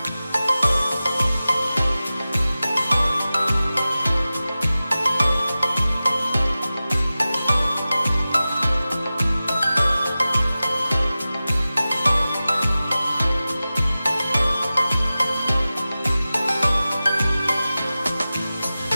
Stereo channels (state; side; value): inverted; both; correlation -0.96